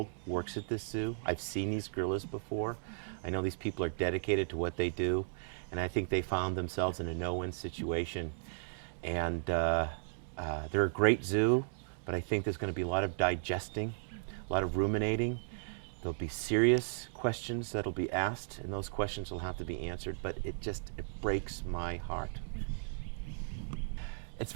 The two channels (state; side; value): silent; left; digital silence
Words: works at this zoo. I've seen these gorillas before. I know these people are dedicated to what they do, and I think they found themselves in a no-win situation. And they're a great zoo, but I think there's going to be a lot of digesting, a lot of ruminating. There'll be serious questions that'll be asked, and those questions will have to be answered, but it breaks my heart. It's